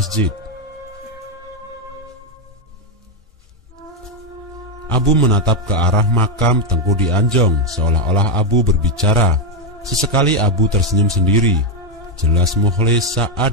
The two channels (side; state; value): both; normal; correlation 0.04